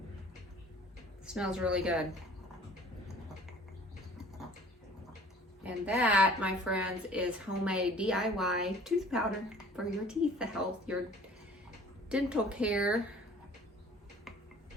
It smells really good. And that, my friends, is homemade DIY tooth powder for your teeth, the health, your dental care.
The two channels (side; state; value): both; normal; correlation 0.50